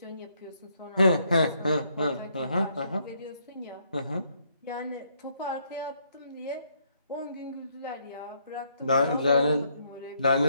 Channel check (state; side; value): inverted; both; correlation -0.71